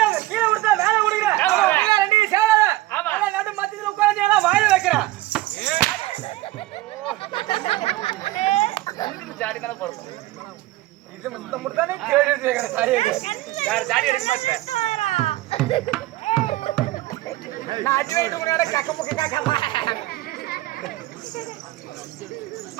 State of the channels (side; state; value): left; quieter; 17.6 dB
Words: கீழ விடுதா மேல விடுங்க. நீங்க ரெண்டு சேராத. அட நடு மத்தியில உட்கார்ந்து எல்லாம் வாயில வைக்கறா. எனக்கு ஜாடி மேல போறோம். இது முத்தமுடனே கேடி கேக்குற சாரி. யார் ஜாடி எடுக்க மாட்டே. நான் அடி வைத்து உனட கக்க காக்கமா.